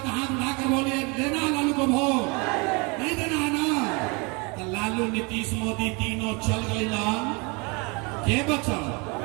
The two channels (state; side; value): quieter; left; 29.8 dB